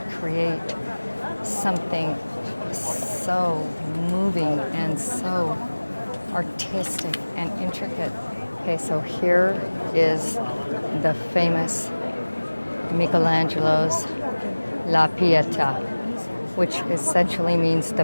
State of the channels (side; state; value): both; inverted; correlation -1.00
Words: create something so moving and so artistic and intricate. Okay, so here is the famous Michelangelo's La Pietà, which essentially means the